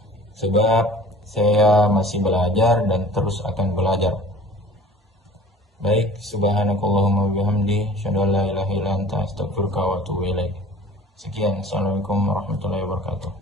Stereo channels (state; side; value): normal; both; correlation 0.46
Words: sebab saya masih belajar dan terus akan belajar. Baik, subhanakallahumma bihamdi, asyhadu an la ilaha illa anta, astaghfiruka wa atubu ilaik. Sekian, assalamualaikum warahmatullahi